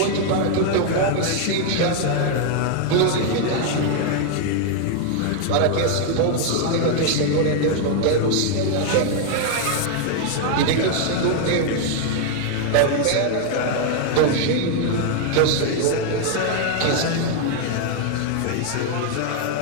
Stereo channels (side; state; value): both; different; correlation 0.00